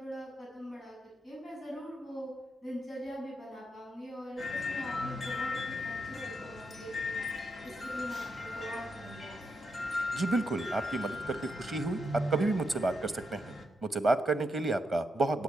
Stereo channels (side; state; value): both; normal; correlation 0.82